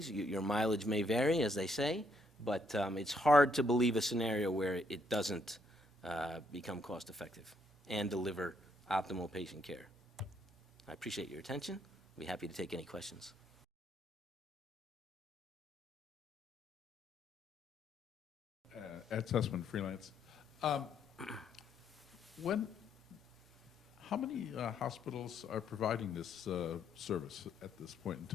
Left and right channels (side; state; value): both; normal; correlation 0.72